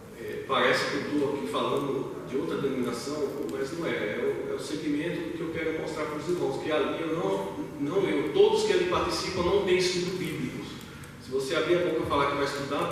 parece que eu estou aqui falando de outra denominação, mas não é. É o segmento que eu quero mostrar para os irmãos, que ali todos que ali participam não têm estudo bíblicos. Se você abrir a boca e falar que vai estudar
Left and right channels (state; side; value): identical; both; correlation 1.00